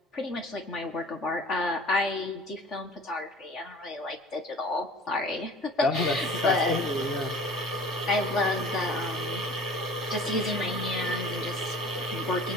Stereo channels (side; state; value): both; normal; correlation 0.45